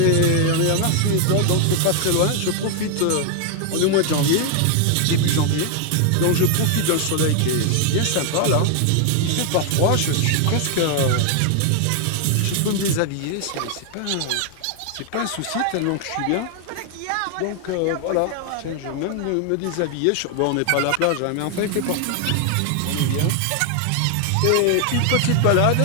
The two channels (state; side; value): different; both; correlation 0.00